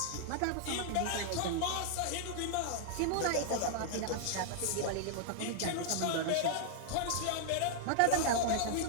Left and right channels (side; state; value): both; different; correlation -0.01